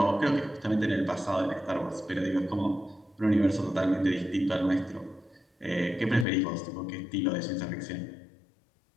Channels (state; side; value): drops out; right; at 6.2 s